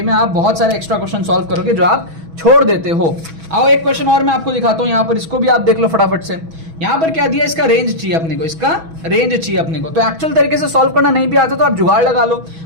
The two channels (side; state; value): left; late; 6.2 ms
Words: में आप बहुत सारे एक्स्ट्रा क्वेश्चन सॉल्व करोगे जो आप छोड़ देते हो। आओ एक क्वेश्चन और मैं आपको दिखाता हूं यहाँ पर, इसको भी आप देख लो फटाफट से। यहाँ पर क्या दिया, इसका रेंज चाहिए अपने को, इसका रेंज चाहिए अपने को। तो एक्चुअल तरीके से सॉल्व करना नहीं भी आता तो आप जुगाड़ लगा लो।